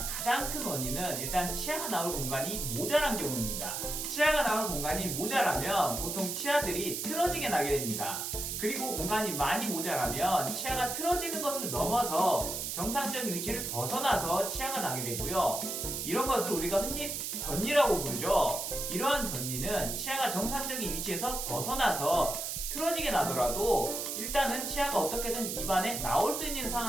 가장 큰 원인은 일단 치아가 나올 공간이 모자란 경우입니다. 치아가 나올 공간이 모자라면 보통 치아들이 틀어지게 나게 됩니다. 그리고 공간이 많이 모자라면 치아가 틀어지는 것을 넘어서 정상적인 위치를 벗어나서 치아가 나게 되고요. 이런 것을 우리가 흔히 덧니라고 부르죠. 이러한 덧니는 치아가 정상적인 위치에서 벗어나서 틀어지게 나더라도 일단은 치아가 어떻게든 입안에 나올 수 있는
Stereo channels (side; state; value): right; noise; hiss, 3 dB below the sound